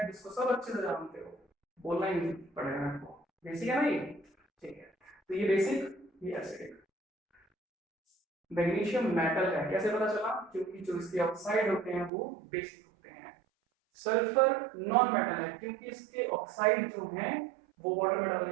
जिसको सब अच्छे से जानते हो, बोलना ही पड़ेगा आपको, बेसिक है ना ये, ठीक है। तो ये बेसिक, ये एसिडिक। मैग्नीशियम मेटल है, कैसे पता चला, क्योंकि जो इसके ऑक्साइड होते हैं वो बेसिक होते हैं। सल्फर नॉन मेटल है क्योंकि इसके ऑक्साइड जो हैं वो वाटर में डालने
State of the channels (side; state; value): left; drops out; at 12.1 s